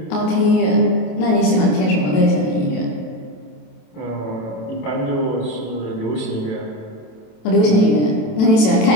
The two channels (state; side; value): late; right; 27 ms